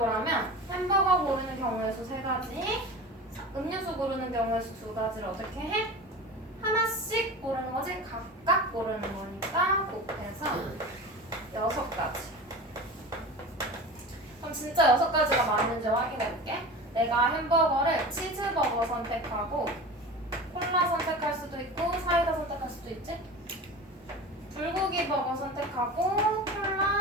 햄버거 고르는 경우의 수 3가지 음료수 고르는 경우의 수 2가지를 어떻게 해? 하나씩 고르는 거지? 각각 고르는 거니까 곱해서 6가지 그럼 진짜 6가지가 맞는지 확인해볼게 내가 햄버거를 치즈버거 선택하고 콜라 선택할 수도 있고 사이다 선택할 수도 있지? 불고기 버거 선택하고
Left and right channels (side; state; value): both; normal; correlation 0.33